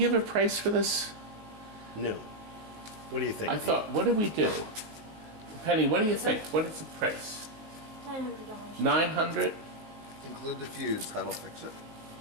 a price for this? No. What do you think? I thought, what did we do? Penny, what do you think? What is the price? $900. 900? Include the fuse. That'll fix it.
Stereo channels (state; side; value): late; left; 19 ms